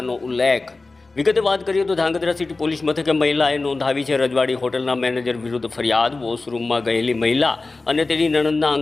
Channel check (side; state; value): right; quieter; 3.5 dB